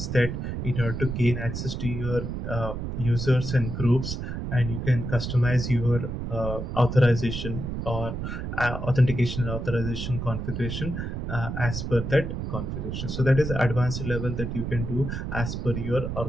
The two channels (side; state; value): right; noise; rumble, 4 dB below the sound